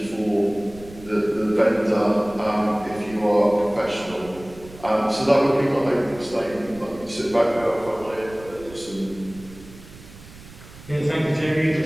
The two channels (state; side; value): noise; right; rumble, 19 dB below the sound